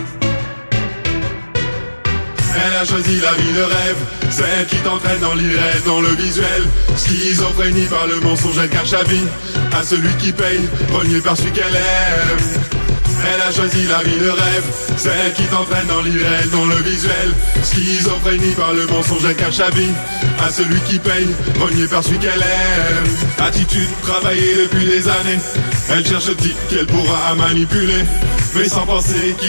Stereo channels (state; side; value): inverted; both; correlation -1.00